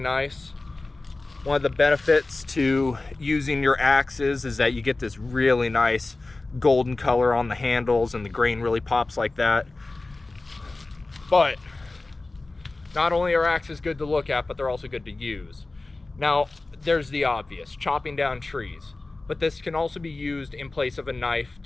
One of the benefits to using your axes is that you get this really nice golden color on the handles and the grain really pops like that. But not only are axes good to look at, but they're also good to use. Now, there's the obvious, chopping down trees. But this can also be used in place of a knife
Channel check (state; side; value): quieter; right; 3.2 dB